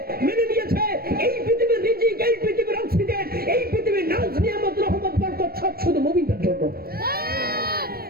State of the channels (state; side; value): late; left; 0.44 ms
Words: মেনে নিয়েছে। এই পৃথিবীর রিজিক, এই পৃথিবীর অক্সিজেন, এই পৃথিবীর নাজ নিয়ামত রহমত বরকত সব শুধু মুমিনদের জন্য।